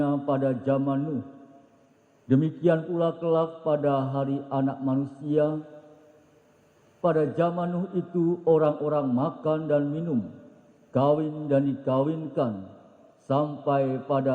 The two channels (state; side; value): identical; both; correlation 1.00